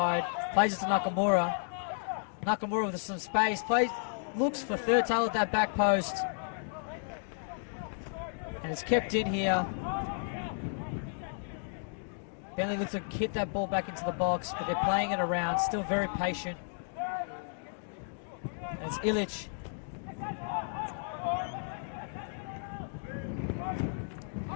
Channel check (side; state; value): right; silent; digital silence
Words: Plays it to Nakamura. Nakamura with some space. Looks for third tail at that back post. And it's kept in here. Bentleigh looks to hit that ball back into the box, but they're playing it around. Still very patient. And it's Illich.